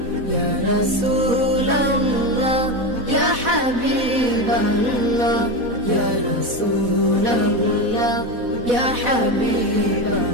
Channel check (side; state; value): left; late; 4.1 ms